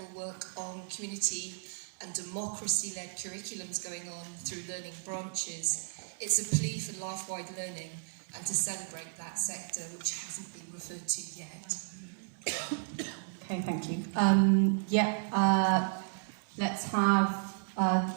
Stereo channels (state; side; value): silent; left; digital silence